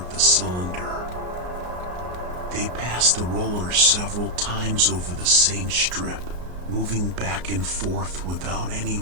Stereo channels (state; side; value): late; left; 33 ms